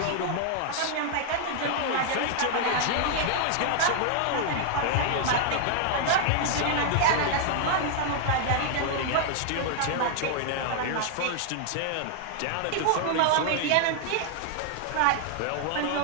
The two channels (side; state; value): both; different; correlation 0.00